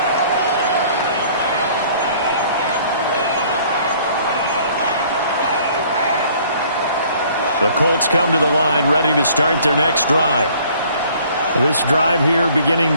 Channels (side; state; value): both; inverted; correlation -0.56